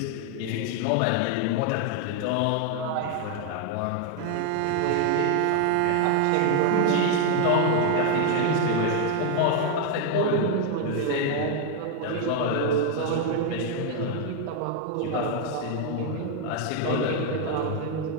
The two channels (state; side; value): different; both; correlation 0.01